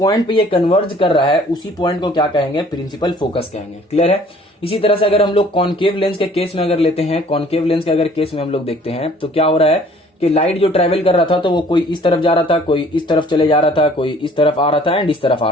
पे ये कन्वर्ज कर रहा है उसी पॉइंट को क्या कहेंगे, प्रिंसिपल फोकस कहेंगे। क्लियर है? इसी तरह से अगर हम लोग कॉनकेव लेंस के केस में अगर लेते हैं, कॉनकेव लेंस के अगर केस में हम लोग देखते हैं तो क्या हो रहा है कि लाइट जो ट्रेवल कर रहा था तो वो कोई इस तरफ जा रहा था, कोई इस तरफ चले जा रहा था, कोई इस तरफ आ रहा था एंड इस तरफ आ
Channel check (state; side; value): normal; both; correlation 0.55